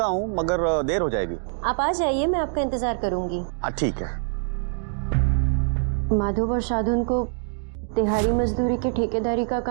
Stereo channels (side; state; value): left; silent; digital silence